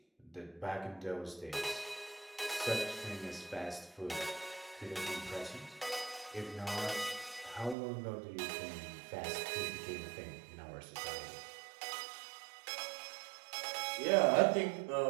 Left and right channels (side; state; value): left; drops out; at 7.8 s